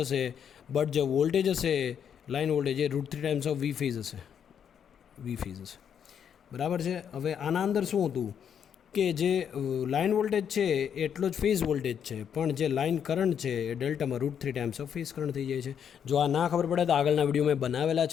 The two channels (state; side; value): quieter; right; 8.2 dB